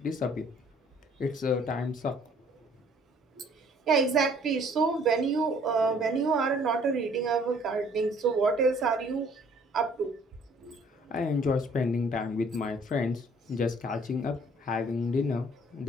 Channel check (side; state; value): both; normal; correlation 0.58